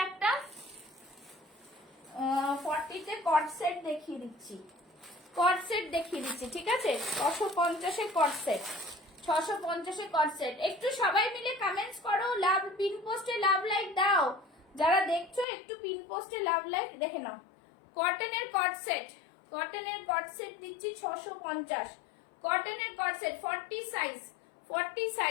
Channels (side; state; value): right; drops out; at 15.5 s